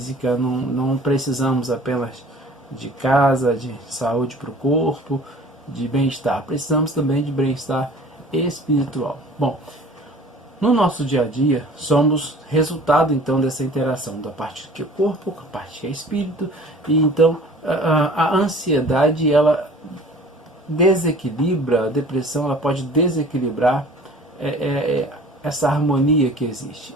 não precisamos apenas de casa, de saúde para o corpo, de bem-estar. Precisamos também de bem-estar espiritual. Bom, no nosso dia a dia, somos resultado então dessa interação da parte que é corpo com a parte que é espírito, e então a ansiedade, ela desequilibra, a depressão, ela pode desequilibrar essa harmonia que existe.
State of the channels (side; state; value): both; normal; correlation 0.47